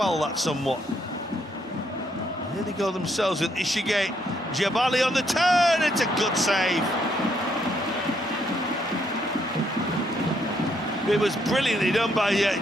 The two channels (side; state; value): both; normal; correlation 0.73